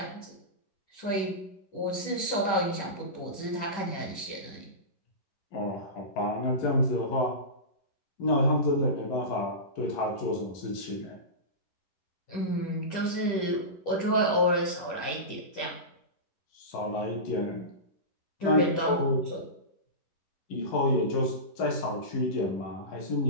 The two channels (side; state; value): right; late; 10 ms